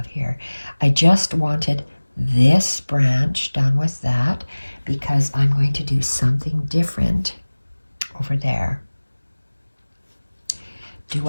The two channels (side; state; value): both; inverted; correlation -1.00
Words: here. I just wanted this branch done with that because I'm going to do something different over there. Do